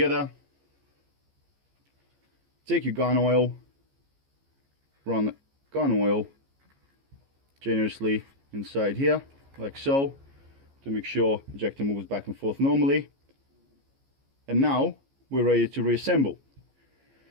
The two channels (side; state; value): left; late; 15 ms